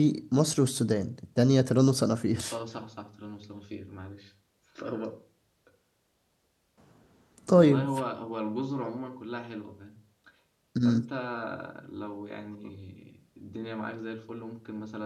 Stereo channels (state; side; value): identical; both; correlation 1.00